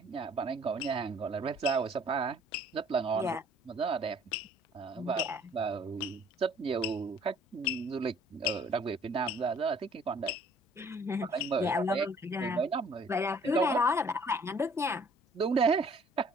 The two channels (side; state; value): both; normal; correlation 0.56